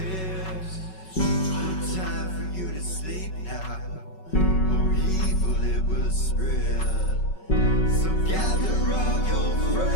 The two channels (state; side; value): late; right; 5.3 ms